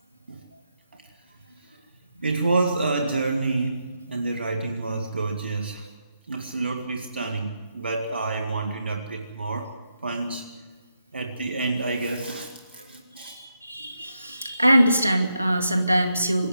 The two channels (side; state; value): both; inverted; correlation -0.83